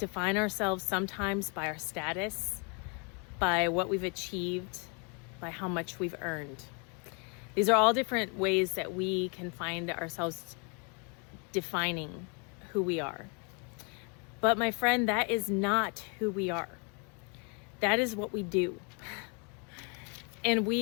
ourselves sometimes by our status, by what we've achieved, by how much we've earned. These are all different ways that we can find ourselves defining who we are. But my friend, that is not who we are. That is what we do. And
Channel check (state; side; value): quieter; right; 35.3 dB